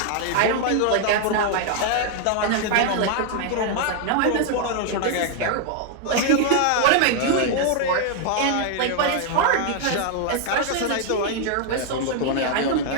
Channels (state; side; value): different; both; correlation 0.00